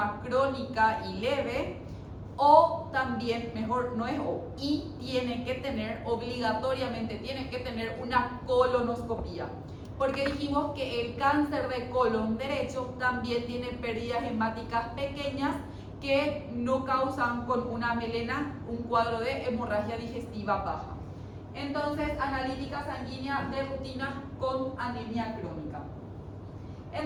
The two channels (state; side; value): identical; both; correlation 1.00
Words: crónica y leve, o también, mejor no es o, y tiene que tener, obligatoriamente tiene que tener una colonoscopía, porque dijimos que el cáncer de colon derecho también tiene pérdidas hemáticas pequeñas que no causan con una melena un cuadro de hemorragia digestiva baja. Entonces, analítica sanguínea de rutina con anemia crónica.